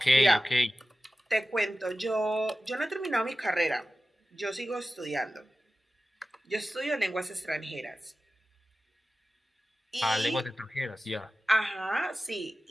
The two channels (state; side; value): normal; both; correlation 0.95